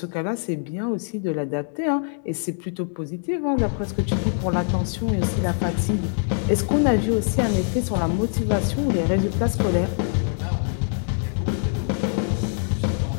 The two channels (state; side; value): silent; right; 63 dB below the other